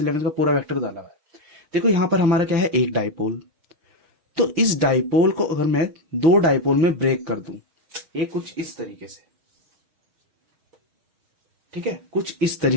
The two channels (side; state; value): left; late; 6.3 ms